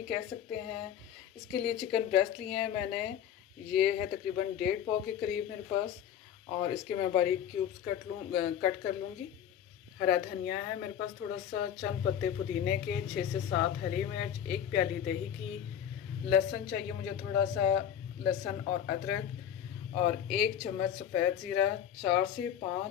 कह सकते हैं। इसके लिए चिकन ब्रेस्ट लिए हैं मैंने, ये है तकरीबन 1.5 पाव के करीब मेरे पास, और इसके मैं बारीक क्यूब्स कट कर लूँगी। हरा धनिया है मेरे पास थोड़ा सा, चंद पत्ते पुदीने के, 6 से 7 हरी मिर्च, 1 प्याली दही की, लहसुन चाहिए मुझे थोड़ा सा, लहसुन और अदरक, और 1 चम्मच सफ़ेद ज़ीरा, 4 से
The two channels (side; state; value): right; quieter; 9.5 dB